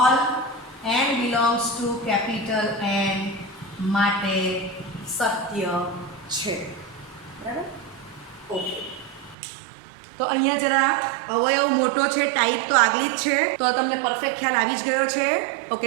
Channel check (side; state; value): left; drops out; at 9.3 s